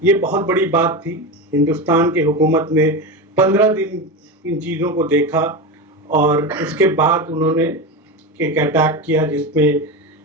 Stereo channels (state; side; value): normal; both; correlation 0.20